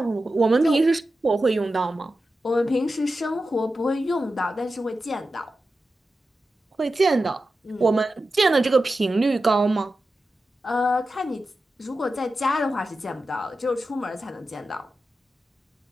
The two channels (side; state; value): both; normal; correlation 0.92